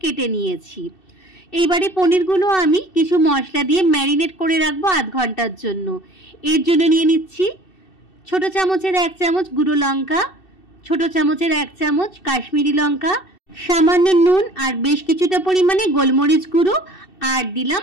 কেটে নিয়েছি। এইবারে পনিরগুলো আমি কিছু মশলা দিয়ে ম্যারিনেট করে রাখবো আধ ঘন্টার জন্য। এর জন্য নিয়ে নিচ্ছি ছোট চামচের 1 চামচ গুঁড়ো লঙ্কা, ছোট চামচের 1 চামচ কাশ্মীরি লঙ্কা, সামান্য নুন আর বেশ কিছুটা পরিমাণে গোলমরিচ গুঁড়ো, আর দিলাম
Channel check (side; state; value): right; late; 2.7 ms